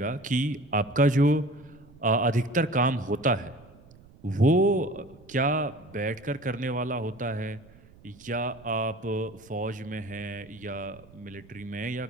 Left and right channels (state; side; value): noise; right; rumble, 24 dB below the sound